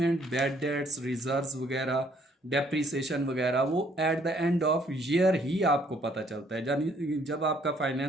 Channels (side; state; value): both; normal; correlation 0.65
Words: बैड डेट्स, रिजर्व्स वगैरह, डेप्रीसिएशन वगैरह, वो at the end of year ही आपको पता चलता है। यानी जब आपका